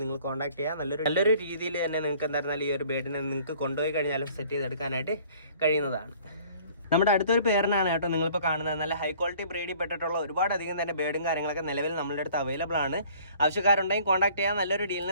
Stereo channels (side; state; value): both; inverted; correlation -0.53